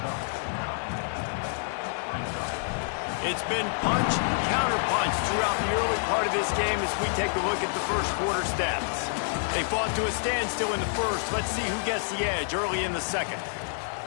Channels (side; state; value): right; silent; 59 dB below the other